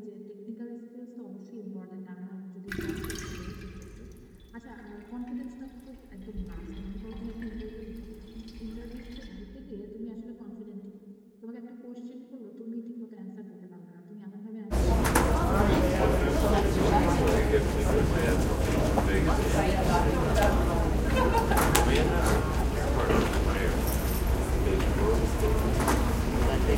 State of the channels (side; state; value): both; identical; correlation 1.00